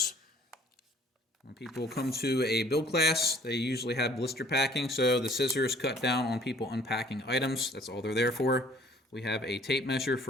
When people come to a build class, they usually have blister packing, so the scissors cut down on people unpacking items. That's all they're there for. We have a tape measure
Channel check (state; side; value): normal; both; correlation 0.55